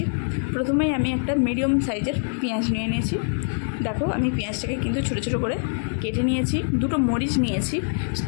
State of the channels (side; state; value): right; silent; 60 dB below the other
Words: প্রথমেই আমি একটা মিডিয়াম সাইজের পেঁয়াজ নিয়ে নিয়েছি। দেখো, আমি পেঁয়াজটাকে কিন্তু ছোটো ছোটো করে কেটে নিয়েছি। দুটো মরিচ নিয়েছি,